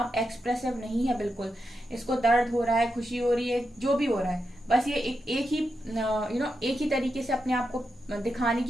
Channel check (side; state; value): both; normal; correlation 0.86